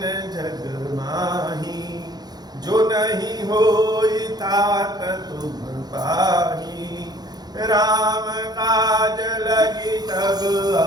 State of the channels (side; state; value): left; late; 0.19 ms